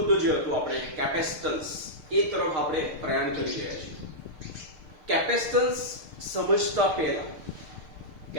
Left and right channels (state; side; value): late; left; 6.6 ms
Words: જે હતો આપણે કેપેસિટન્સ એ તરફ આપણે પ્રયાણ કરી રહ્યા છીએ. કેપેસિટન્સ સમજતા પહેલા,